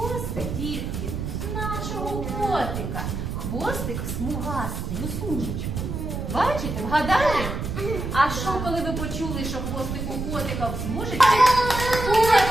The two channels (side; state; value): right; noise; rumble, 4 dB below the sound